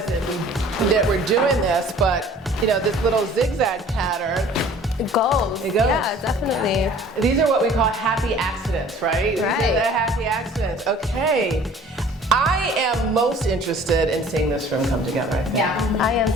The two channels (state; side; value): normal; both; correlation 0.50